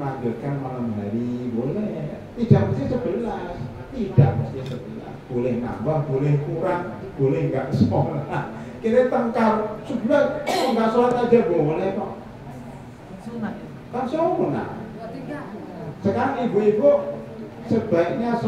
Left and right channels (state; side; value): identical; both; correlation 1.00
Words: malam hari, boleh. Tidak mesti 11, tidak mesti 11. Boleh nambah, boleh kurang, boleh enggak sholat. Kita tengkar 11, enggak sholat aja boleh kok. Kan sunnah. Sekarang ibu-ibu sebaiknya